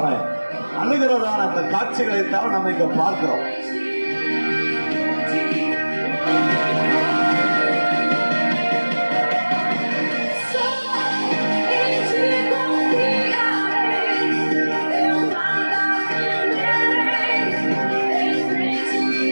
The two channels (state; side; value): inverted; both; correlation -1.00